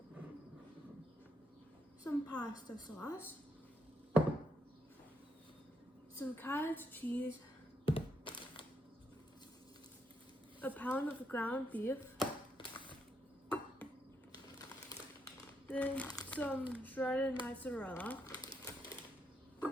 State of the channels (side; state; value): both; normal; correlation 0.79